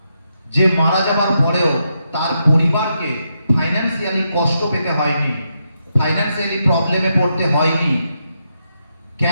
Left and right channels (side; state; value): both; inverted; correlation -0.82